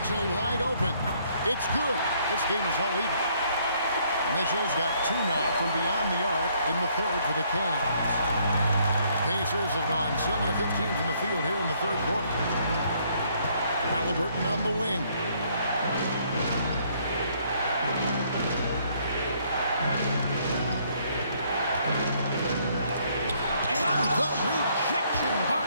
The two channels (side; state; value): both; inverted; correlation -0.67